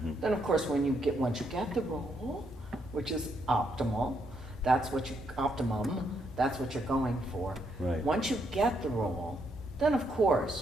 Then of course once you get the role, which is optimum, that's what you're going for. Right. Once you get the role, then of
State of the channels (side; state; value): both; normal; correlation 0.76